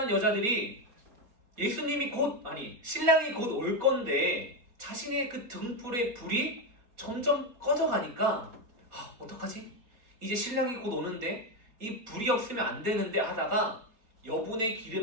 여자들이 신랑이 곧 올 건데 자신의 그 등불의 불이 점점 꺼져가니까 어떡하지? 이제 신랑이 곧 오는데 이 불이 없으면 안 되는데 하다가 여분의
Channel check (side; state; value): left; late; 4.3 ms